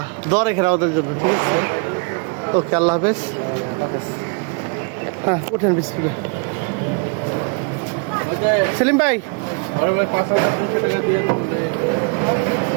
দোয়া রাখেন আমাদের জন্য, ঠিক আছে? ওকে, আল্লাহ হাফেজ। হ্যাঁ, উঠেন বিসমিল্লাহ। সেলিম ভাই,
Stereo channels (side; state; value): left; quieter; 34.8 dB